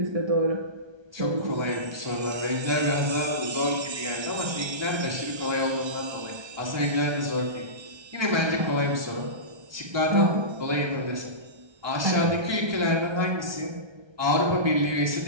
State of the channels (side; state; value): left; late; 1.3 ms